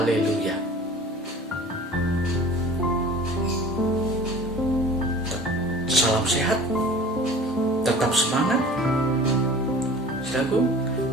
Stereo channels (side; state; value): both; normal; correlation 0.43